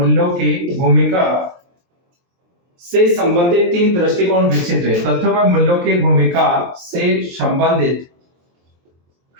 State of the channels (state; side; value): late; left; 23 ms